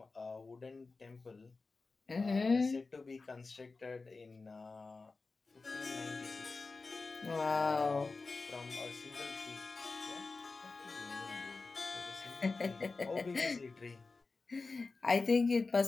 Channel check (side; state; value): right; quieter; 3.9 dB